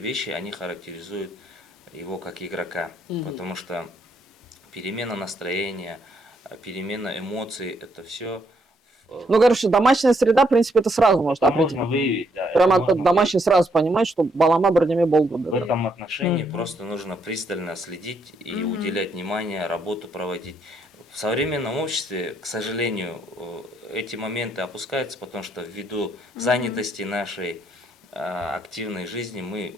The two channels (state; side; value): normal; both; correlation 0.73